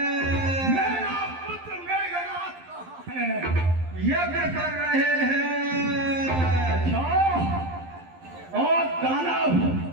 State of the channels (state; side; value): late; left; 11 ms